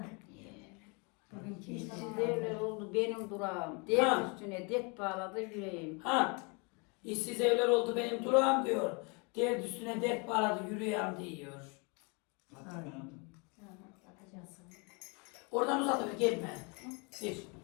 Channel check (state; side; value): quieter; right; 32.0 dB